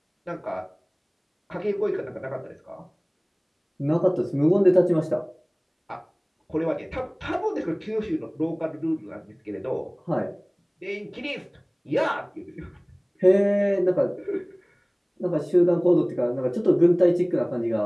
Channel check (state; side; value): identical; both; correlation 1.00